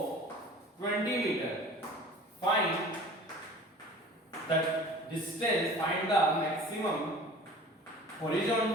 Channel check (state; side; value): normal; both; correlation 0.43